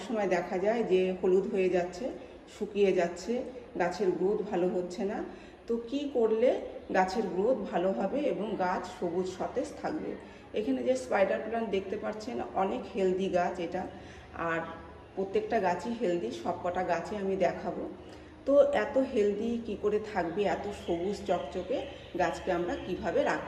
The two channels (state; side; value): identical; both; correlation 1.00